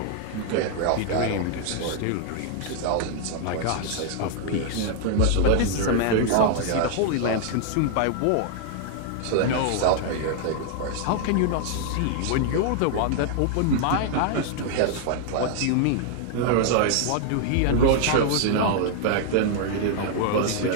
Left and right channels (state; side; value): different; both; correlation 0.00